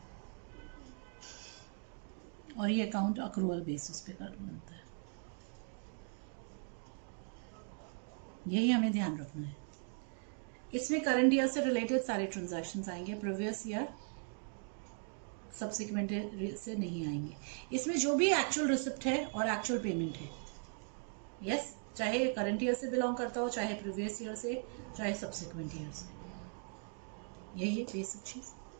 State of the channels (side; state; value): left; silent; 52 dB below the other